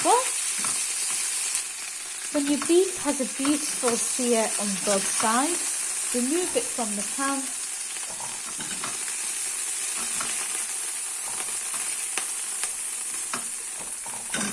well. When your beef has a beautiful sear on both sides, remove it from the pan.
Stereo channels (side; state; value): both; identical; correlation 1.00